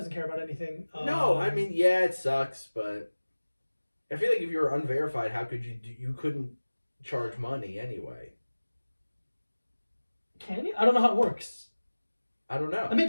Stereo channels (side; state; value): both; inverted; correlation -1.00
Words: care about anything. No, I mean, yeah, it sucks, but I feel like if you were unverified, how could you couldn't charge money anyway. Can you? I don't know how it works. I don't know. That